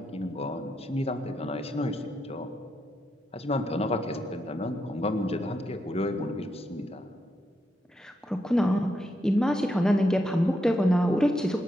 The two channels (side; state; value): both; normal; correlation 0.82